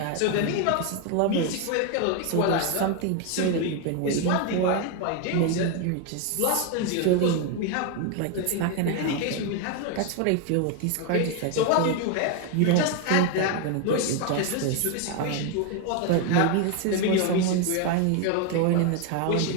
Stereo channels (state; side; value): different; both; correlation 0.01